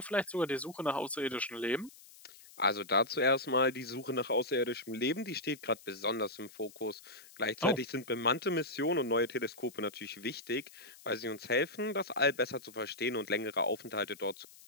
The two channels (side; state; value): left; noise; hiss, 21 dB below the sound